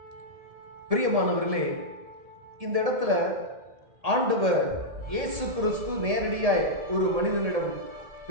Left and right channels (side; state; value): left; late; 1.7 ms